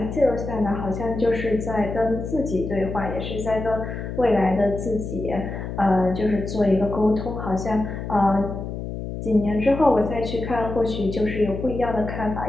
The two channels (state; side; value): noise; left; hum, 6 dB below the sound